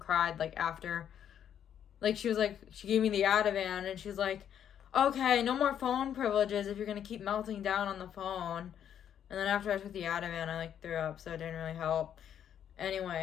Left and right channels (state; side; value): quieter; right; 9.4 dB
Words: like after, like she gave me the Ativan, and she's like, okay, no more phone privileges if you're gonna keep melting down on the phone. And then after I took the Ativan, I like threw up, so it didn't really help.